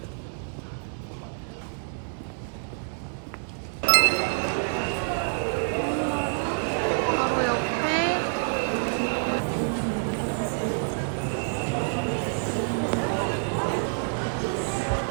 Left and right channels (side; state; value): left; silent; 60 dB below the other